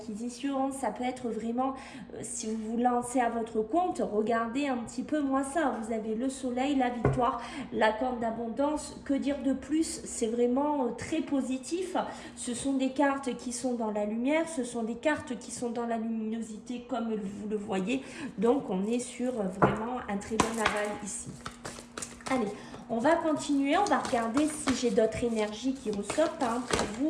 ça peut être vraiment, si vous vous lancez à votre compte, regardez un petit peu moins ça. Vous avez le soleil, la victoire, la corne d'abondance. Que dire de plus? C'est vraiment très positif. Ce sont des cartes qui sont dans la lumière, ce sont des cartes qui sont dans la luminosité comme vous le voyez. Donc on est sur vraiment un très bon aval ici. Allez, on va continuer, on va regarder si j'ai d'autres énergies qui ressortent pour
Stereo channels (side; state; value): both; identical; correlation 1.00